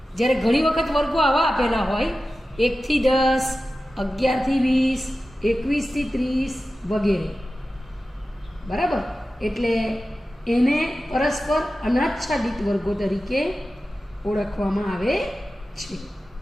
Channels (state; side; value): normal; both; correlation 0.94